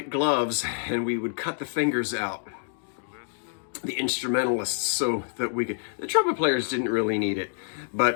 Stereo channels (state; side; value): silent; right; digital silence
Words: gloves and we would cut the fingers out. The instrumentalists, so that we could... The trumpet players didn't really need it.